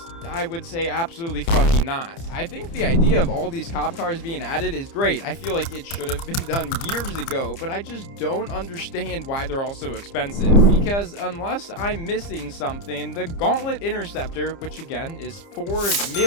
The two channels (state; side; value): late; right; 30 ms